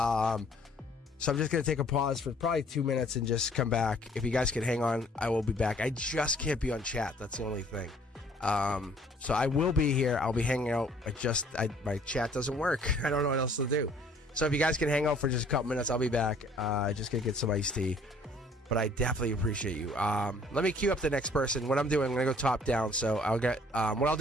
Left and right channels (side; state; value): both; normal; correlation 0.58